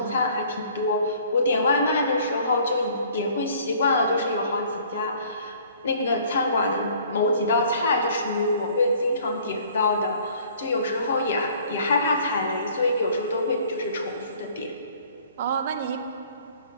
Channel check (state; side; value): inverted; both; correlation -0.55